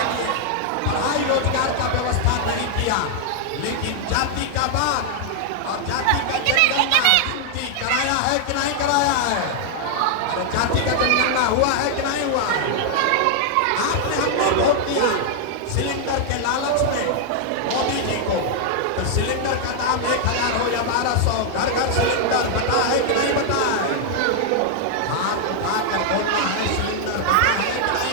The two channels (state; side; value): different; both; correlation 0.00